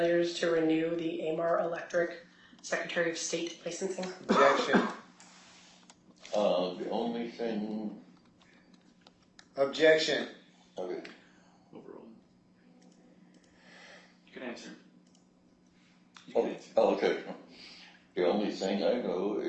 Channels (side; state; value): both; identical; correlation 1.00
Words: to renew the AMAR Electric Secretary of State licensing? Objection. The only thing. Objection. Okay. Overall. You can answer. You Oh, can answer. okay. The only thing I know